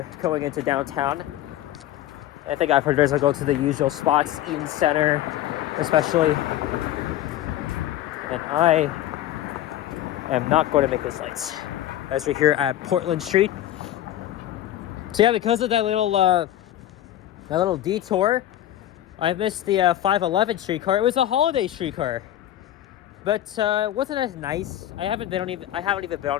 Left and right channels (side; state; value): right; quieter; 12.9 dB